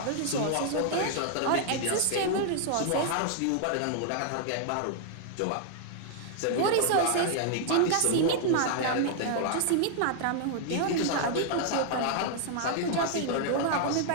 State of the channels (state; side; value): different; both; correlation -0.01